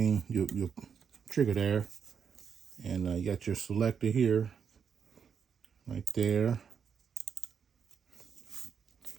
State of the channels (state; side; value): quieter; left; 7.0 dB